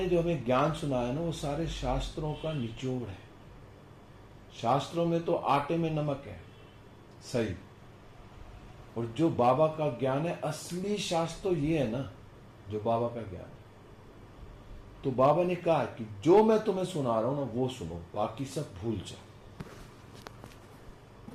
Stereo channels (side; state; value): both; identical; correlation 1.00